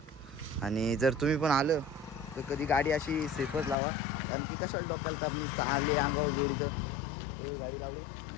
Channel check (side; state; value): right; drops out; at 3.8 s